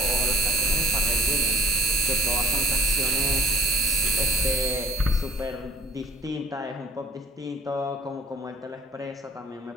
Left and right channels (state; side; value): normal; both; correlation 0.59